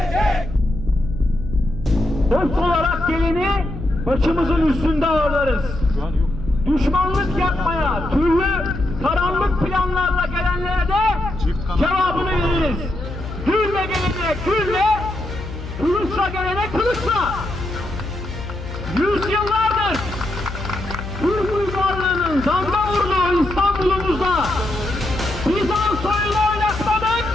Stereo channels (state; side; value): noise; left; hum, 9 dB below the sound